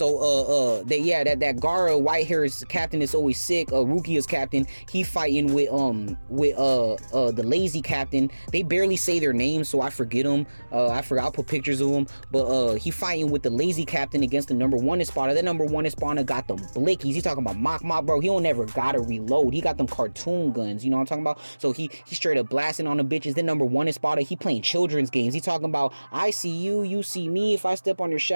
that Gara white hairs captain is always sick. Rukia's captain, he fighting with the lazy captain. They barely say their names, so I forget them. I forgot, I'll put pictures of them. But he fighting with the lazy captain against the number 1 Espada. That number 1 Espada got them blickies. He talking about mock, bro. He don't never gotta reload. He got them cartoon guns. You know what I'm talking about? So he straight up blasting on the bitches. Then number 1 Espada, he playing children's games. He talking about, I see you, you see me. If I step on your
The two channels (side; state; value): both; inverted; correlation -1.00